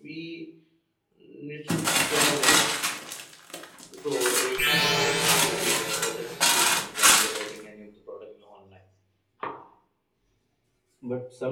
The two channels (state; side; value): identical; both; correlation 1.00